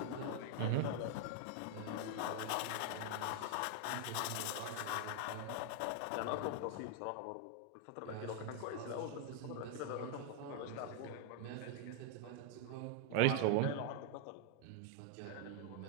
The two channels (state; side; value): different; both; correlation 0.00